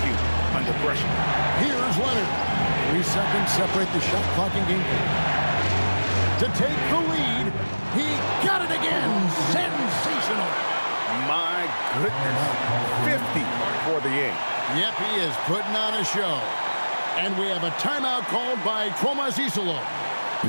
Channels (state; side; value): inverted; both; correlation -1.00